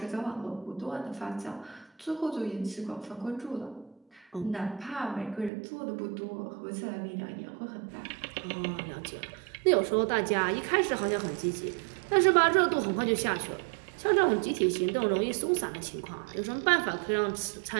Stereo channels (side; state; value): left; drops out; at 5.5 s